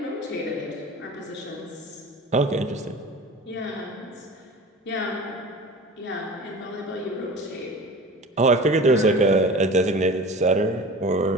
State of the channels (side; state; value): both; normal; correlation 0.37